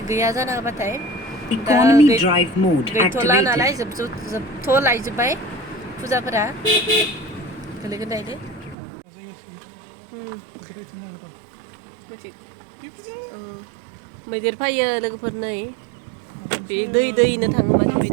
गैया जाना होबाथाय दा गैथ'ला नालाय जोबथ'लायजोब्बाय फुजाफोरा गोलैगोन दायो मैदेर फैयो लोगोफोर नै बे दैनो थाङो माने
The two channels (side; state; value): left; drops out; at 8.8 s